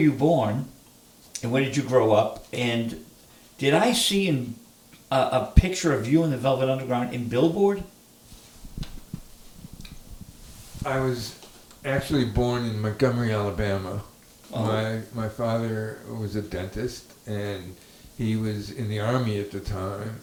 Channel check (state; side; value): identical; both; correlation 1.00